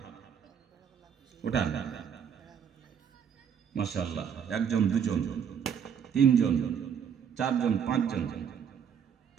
উঠান। মাশাআল্লাহ, 1 জন 2 জন 3 জন 4 জন 5 জন।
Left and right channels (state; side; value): quieter; left; 7.8 dB